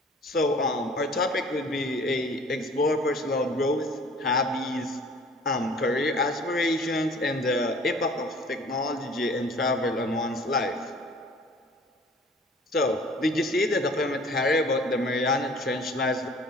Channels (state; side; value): normal; both; correlation 0.50